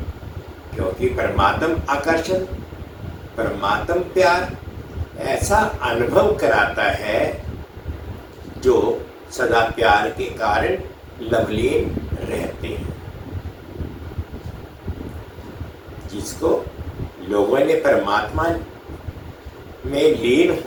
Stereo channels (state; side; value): identical; both; correlation 1.00